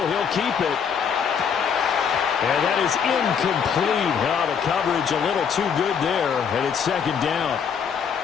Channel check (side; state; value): right; quieter; 7.1 dB